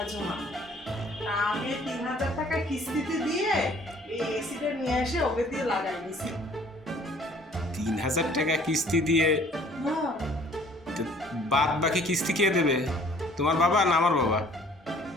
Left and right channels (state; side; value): normal; both; correlation 0.55